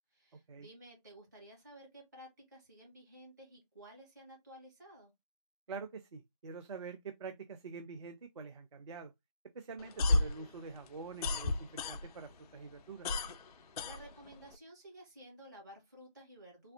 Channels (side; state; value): both; inverted; correlation -0.75